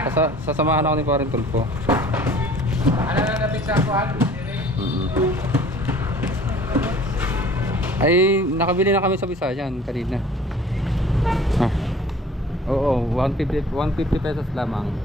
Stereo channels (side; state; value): both; normal; correlation 0.49